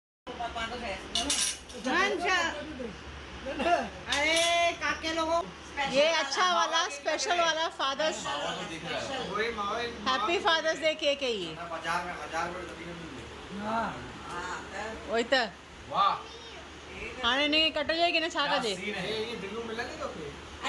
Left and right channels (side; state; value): both; identical; correlation 1.00